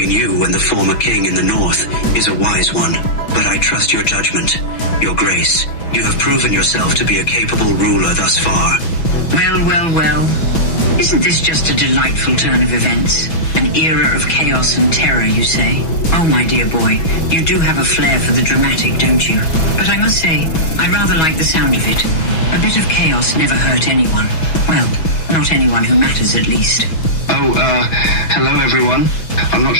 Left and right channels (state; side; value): late; right; 6.2 ms